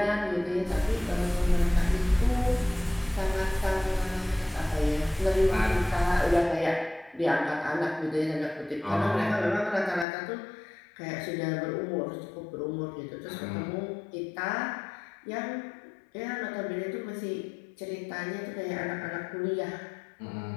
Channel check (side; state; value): right; drops out; at 10.1 s